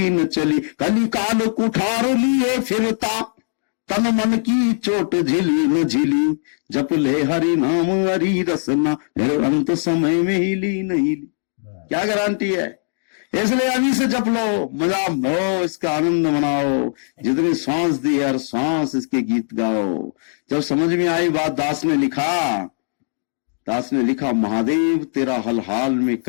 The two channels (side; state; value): right; silent; digital silence